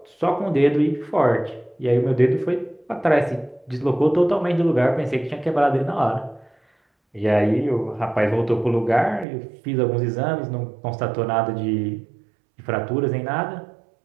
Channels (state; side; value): drops out; left; at 9.2 s